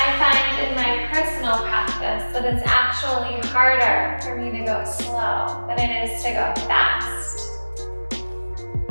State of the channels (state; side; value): inverted; both; correlation -1.00